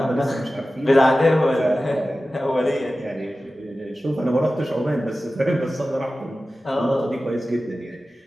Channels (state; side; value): normal; both; correlation 0.95